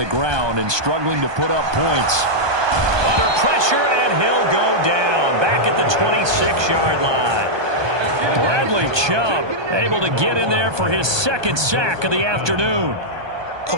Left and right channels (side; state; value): left; late; 1.2 ms